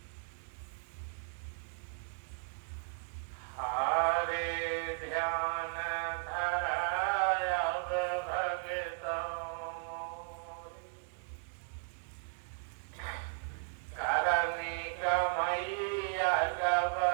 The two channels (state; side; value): silent; left; digital silence